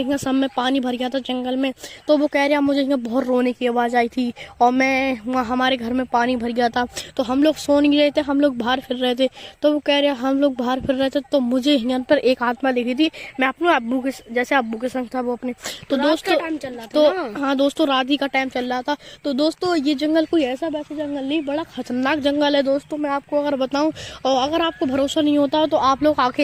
सब में पानी भर गया था जंगल में। तो वो कह रहा मुझे यहाँ बहुत रोने की आवाज़ आई थी और मैं वहाँ हमारे घर में पानी भर गया था। तो हम लोग सो नहीं रहे थे, हम लोग बाहर फिर रहे थे। तो वो कह रहे हम लोग बाहर फिर रहे थे, तो मुझे यहाँ पर एक आत्मा दिखी थी। मैं अपने अब्बू के संग था वो अपने। तो दोस्तों टाइम चल रहा था तो हाँ दोस्तों रात ही का टाइम चल रहा था। तो दोस्तों ये जंगल कोई ऐसा वैसा जंगल नहीं, बड़ा खतरनाक जंगल है दोस्तों, मैं आपको अगर बताऊं। और अगर आपको भरोसा नहीं होता तो आप लोग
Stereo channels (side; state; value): both; identical; correlation 1.00